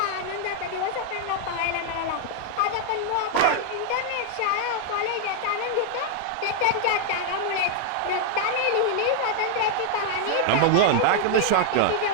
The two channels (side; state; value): both; different; correlation 0.00